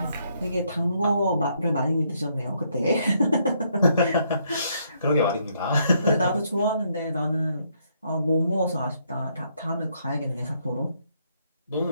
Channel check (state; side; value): inverted; both; correlation -0.72